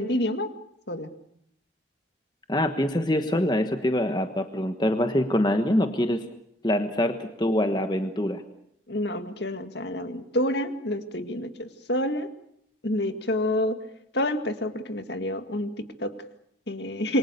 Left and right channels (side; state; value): both; normal; correlation 0.54